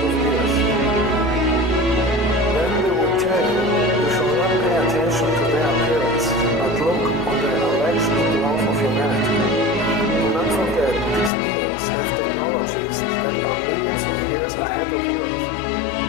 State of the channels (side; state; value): right; drops out; at 11.3 s